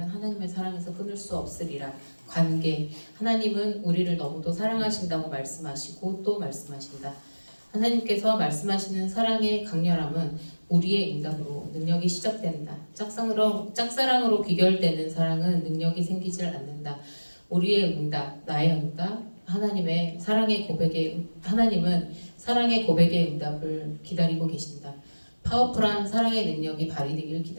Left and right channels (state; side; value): inverted; both; correlation -1.00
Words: 하나님의 사랑에서 끊을 수 없으리라. 관계 하나님은 우리를 너무도 사랑하신다고 말씀하시고 또 말씀하신다. 하나님께서 말씀하시는 사랑의 강렬함은 우리의 응답으로 능력이 시작된다. 짝사랑으로 귀결되는 사랑은 능력이 생기질 않는다. 우리의 응답, 나의 응답, 하나님은 사랑의 고백의 응답을 기다리고 계신다. 파워풀한 사랑의 능력이 발휘되길